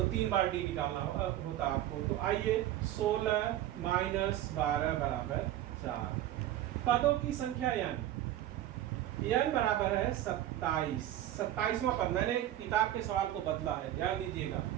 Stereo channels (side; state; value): left; quieter; 13.1 dB